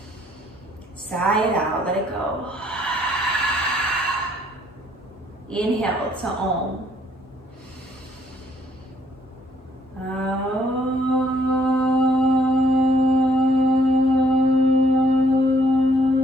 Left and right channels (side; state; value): both; normal; correlation 0.66